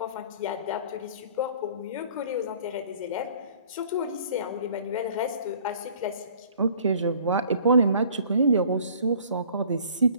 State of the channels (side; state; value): both; inverted; correlation -0.53